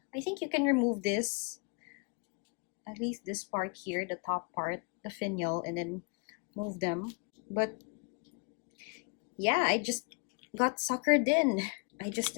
I think you can remove this, at least this part here, the top part, the finial, and then move them. But yeah, I just got suckered in. I just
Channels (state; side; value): quieter; right; 34.3 dB